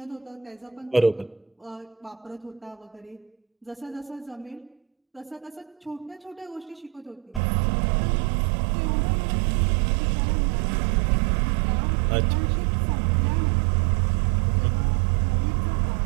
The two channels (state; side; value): drops out; left; at 7.4 s